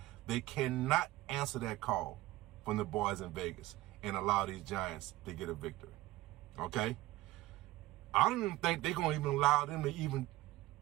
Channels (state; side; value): quieter; left; 17.7 dB